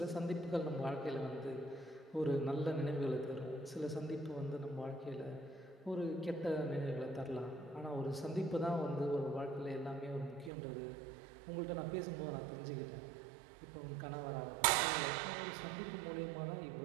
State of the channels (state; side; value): drops out; left; at 10.5 s